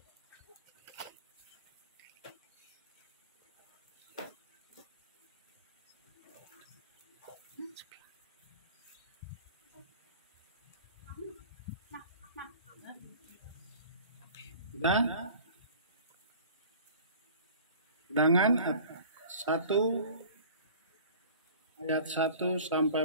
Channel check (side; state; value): both; inverted; correlation -0.44